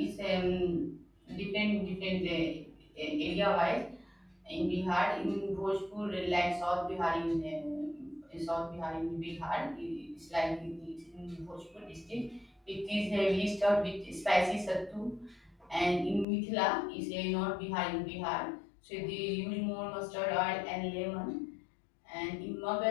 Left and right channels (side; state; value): right; drops out; at 16.2 s